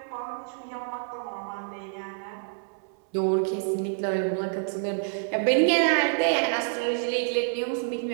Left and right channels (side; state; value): left; silent; 60 dB below the other